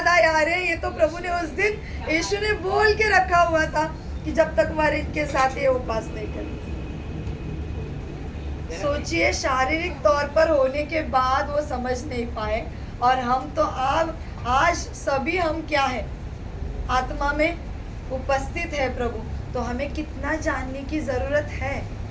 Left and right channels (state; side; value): identical; both; correlation 1.00